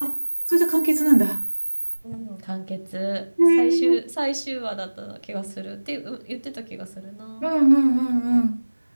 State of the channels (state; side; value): inverted; both; correlation -1.00